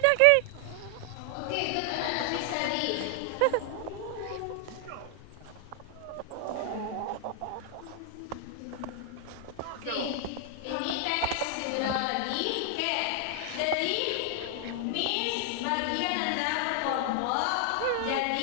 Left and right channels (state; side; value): different; both; correlation 0.00